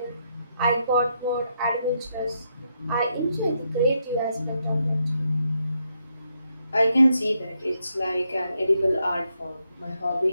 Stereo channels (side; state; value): both; inverted; correlation -0.79